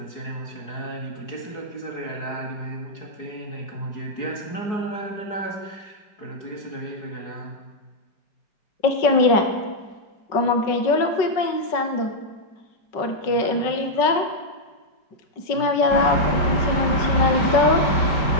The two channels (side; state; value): right; late; 5.4 ms